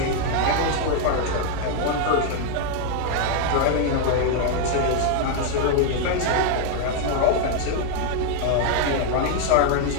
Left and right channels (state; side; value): different; both; correlation 0.00